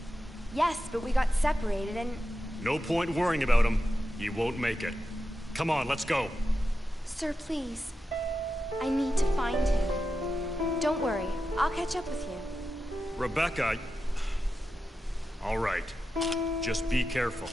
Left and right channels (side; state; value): both; normal; correlation 0.90